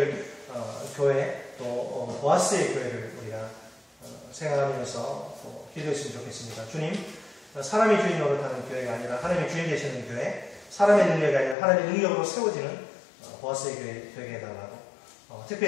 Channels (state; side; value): drops out; right; at 11.6 s